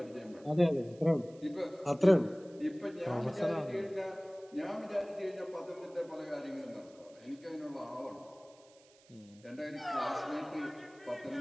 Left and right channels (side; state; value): right; noise; hiss, 27 dB below the sound